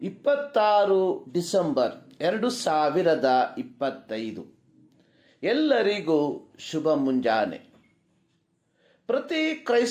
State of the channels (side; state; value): both; identical; correlation 1.00